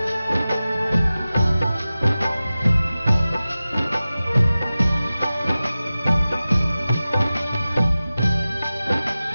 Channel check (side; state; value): both; inverted; correlation -0.96